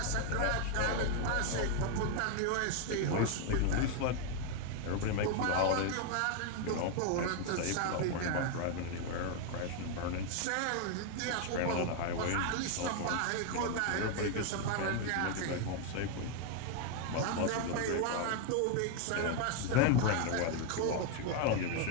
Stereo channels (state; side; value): different; both; correlation 0.01